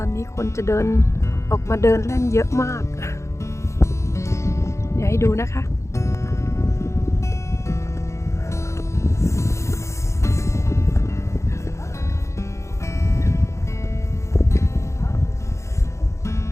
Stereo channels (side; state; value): right; late; 0.14 ms